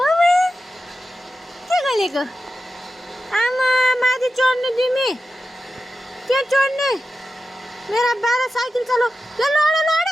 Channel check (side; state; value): both; normal; correlation 0.92